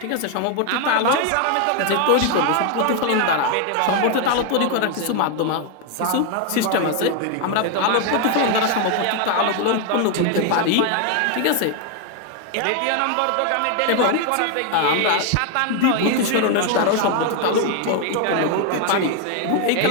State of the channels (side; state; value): both; different; correlation 0.01